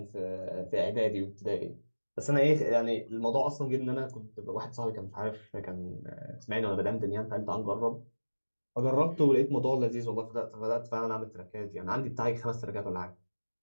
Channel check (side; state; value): both; inverted; correlation -1.00